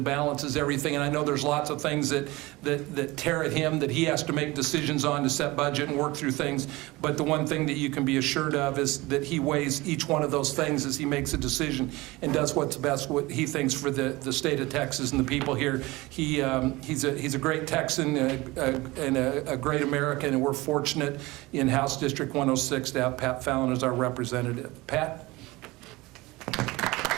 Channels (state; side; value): quieter; left; 21.3 dB